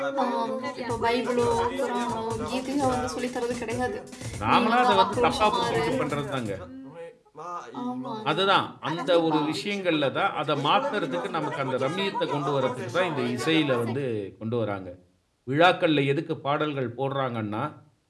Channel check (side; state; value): both; identical; correlation 1.00